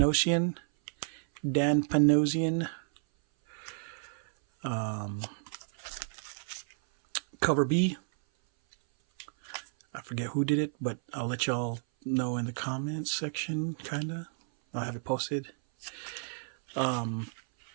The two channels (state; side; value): silent; left; 57 dB below the other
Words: Dan Panosian. Cover B, I forget who did it, but I'll let y'all know in the comments section, kinda. I'll have it posted. The